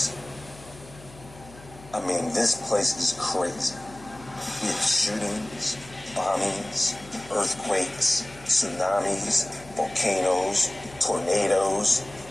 I mean, this place is crazy. We have shootings, bombings, earthquakes, tsunamis, volcanoes, tornadoes,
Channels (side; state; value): left; noise; hum, 20 dB below the sound